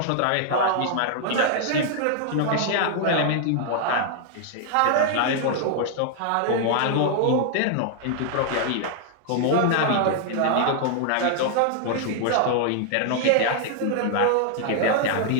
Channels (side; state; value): both; different; correlation 0.00